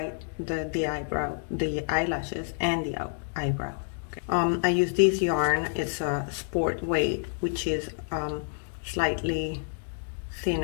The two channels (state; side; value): silent; right; digital silence